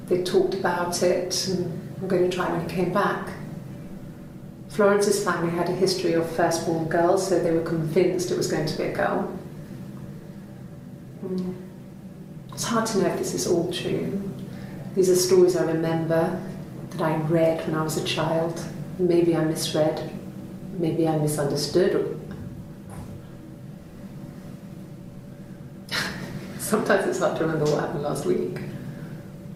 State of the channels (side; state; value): both; identical; correlation 1.00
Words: They talked about it and were going to try when he came back. Florence's family had a history of firstborn girls, so they were convinced it was going to be a girl. It's hard to know if this is all true. These are stories I remember, that I read when I was a child. Maybe I misread, maybe I misunderstood. Sometimes it's hard to remember what happened last week.